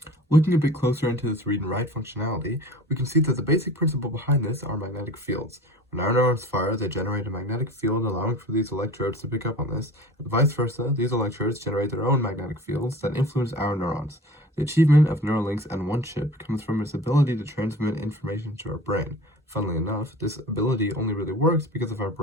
Looking a bit closer into this read and write functionality, we can see that the basic principle behind this are magnetic fields. When our neurons fire, they generate a magnetic field, allowing for these electrodes to pick up on this, and vice versa, these electrodes generate their own magnetic fields that influence our neurons. The achievement of Neuralinks and one chip comes from its ability to transmit information to our brain. Funnily enough, this ability only really works because of our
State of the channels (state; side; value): normal; both; correlation 0.41